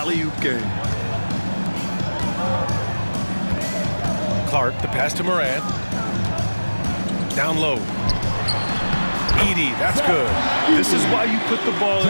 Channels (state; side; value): inverted; both; correlation -1.00